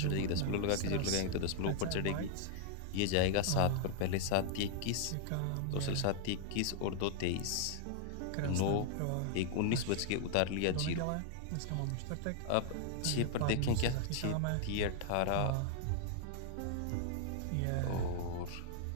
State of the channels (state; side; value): different; both; correlation 0.00